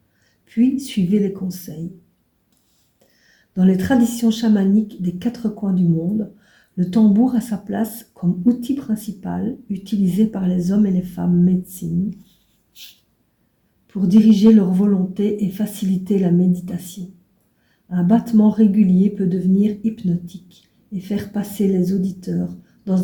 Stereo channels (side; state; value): both; identical; correlation 1.00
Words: puis suivez les conseils. Dans les traditions chamaniques des 4 coins du monde, le tambour a sa place comme outil principal utilisé par les hommes et les femmes médecine pour diriger leur volonté et faciliter la méditation. Un battement régulier peut devenir hypnotique et faire passer les auditeurs